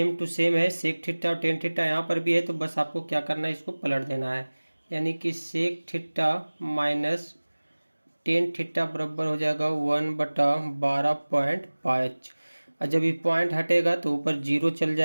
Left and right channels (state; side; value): inverted; both; correlation -1.00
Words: टू सेम है। सेक थीटा और टेन थीटा यहाँ पर भी है, तो बस आपको क्या करना है, इसको पलट देना है। यानी कि sec theta minus tan theta बराबर हो जाएगा 1/12.5। और जब ये पॉइंट हटेगा तो ऊपर जीरो चल